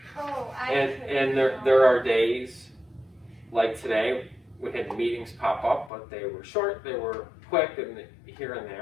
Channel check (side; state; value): right; drops out; at 5.9 s